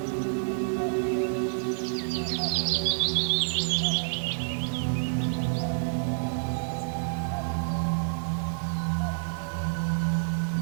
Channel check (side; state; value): left; silent; digital silence